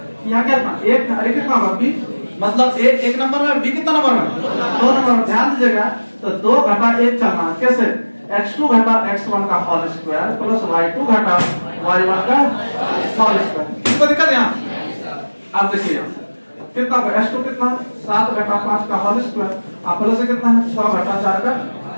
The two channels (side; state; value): both; inverted; correlation -1.00